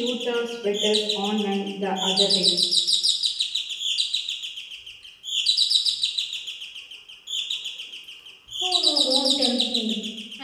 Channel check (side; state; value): both; identical; correlation 1.00